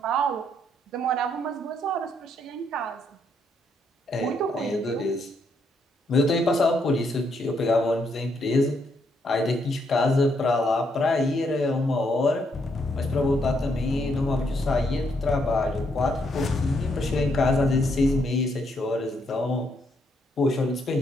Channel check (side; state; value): both; normal; correlation 0.75